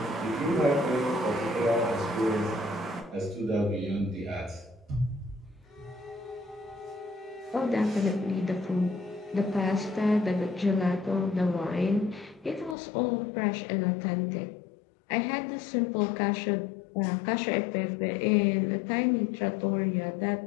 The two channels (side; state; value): right; drops out; at 12.8 s